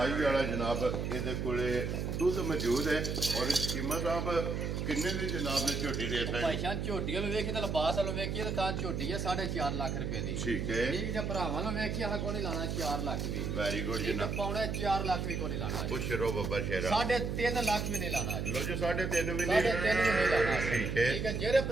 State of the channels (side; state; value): right; noise; hum, 2 dB below the sound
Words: ਵਾਲਾ ਜਨਾਬ ਇਹਦੇ ਕੋਲੇ ਦੁੱਧ ਮੌਜੂਦ ਹੈ ਔਰ ਕੀਮਤ ਸਾਹਿਬ ਕਿੰਨੇ ਦੀ ਜਨਾਬ ਨੇ ਝੋਟੀ ਦੇ ਭਾਈ ਸਕਦੇ? ਜਾਨ ਝੋਟੀਆਂ ਨੂੰ ਵੇਖੀ ਤਾਂ ਲਿਬਾਸ ਵਾਲੋਂ ਵੇਖੀਏ ਤਾਂ ਝੋਟੀ ਹੈ 4.5 ਲੱਖ ਰੁਪਏ ਦੀ। ਠੀਕ ਹੈ, ਠੀਕ ਜੇ ਭਰਾਵਾਂ ਨੂੰ ਵੇਖੀਏ ਹਾਂ ਕੋਈ ਨਹੀਂ ਲਾਣਾ 4 ਲੱਖ ਵੀ। ਵੈਰੀ ਗੁੱਡ ਠੀਕ ਹੈ ਜਨਾਬ। ਪੌਣੇ 4 ਲੱਖ ਵੀ ਕੋਈ ਨਹੀਂ ਲਾਣਾ। ਖੁਸ਼ ਰਹੋ ਬੱਬਾ ਸ਼ੇਰਾ। 3.5 ਲੱਖ ਵੀ ਨਹੀਂ ਲਾਣਾ। ਲੋ ਜੀ 3.5 ਵੀ 3.5 ਨਹੀਂ। ਵੀ ਨਹੀਂ ਲਾਣਾ। ਠੀਕ ਹੈ। ਠੀਕ ਹੈ ਜਿਹੜੇ